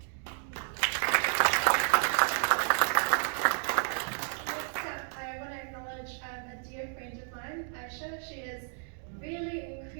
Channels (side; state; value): left; silent; 57 dB below the other